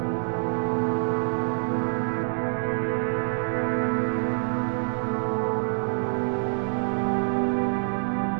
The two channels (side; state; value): left; silent; 61 dB below the other